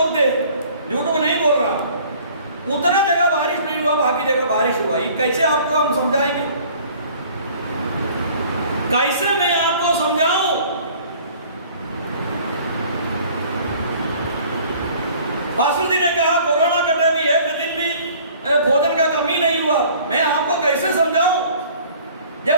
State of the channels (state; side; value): inverted; both; correlation -0.52